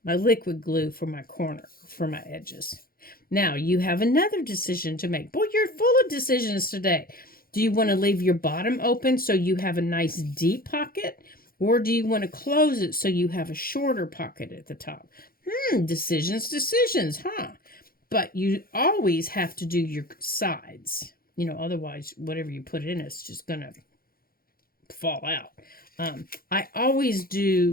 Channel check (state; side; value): late; right; 0.43 ms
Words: my liquid glue for my corner, for my edges. Now, you have another decision to make. Boy, you're full of decisions today. Do you want to leave your bottom open so you have a nice deep pocket? Or do you want to close it so you have a shorter pocket at the top? Decisions, huh? But you always have to do your sides. You know, otherwise, whatever you put in, it's just going to fall out. I always